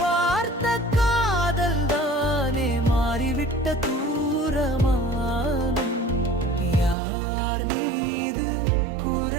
பார்த்த காதல் தானே மாறிவிட்ட தூரமானம். யார் மீது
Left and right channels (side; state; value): left; drops out; at 7.0 s